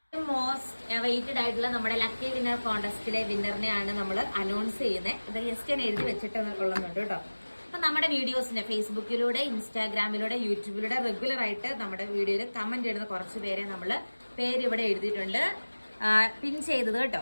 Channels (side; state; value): both; inverted; correlation -1.00